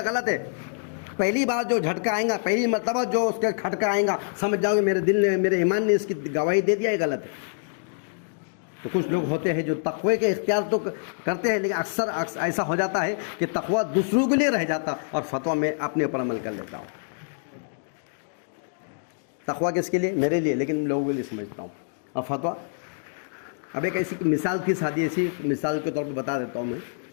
غلط ہے، پہلی بار جو جھٹکا آئے گا، پہلی مرتبہ جو اس کے کھٹکا آئے گا، سمجھ جاؤ گے میرے دل نے، میرے ایمان نے اس کی گواہی دے دیا ہے غلط ہے۔ تو کچھ لوگ ہوتے ہیں جو تقوی کے اختیار تو کرتے ہیں، لیکن اکثر ایسا ہو جاتا ہے کہ تقوی دوسروں کے لیے رہ جاتا اور فتویٰ میں اپنے اوپر عمل کر لیتا ہوں۔ تقوی کس کے لیے؟ میرے لیے، لیکن لوگوں کے لیے سمجھتا ہوں۔ اور فتویٰ، اب ایک ایسی مثال کی سادی ایسی مثال کے طور پہ بتا دیتا ہوں میں،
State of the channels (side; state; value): right; silent; digital silence